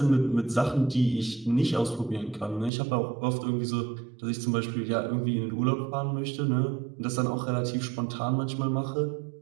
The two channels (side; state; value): left; drops out; at 2.7 s